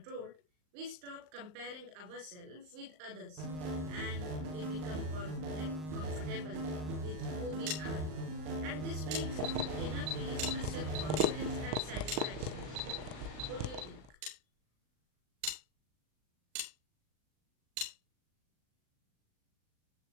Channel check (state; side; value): late; left; 39 ms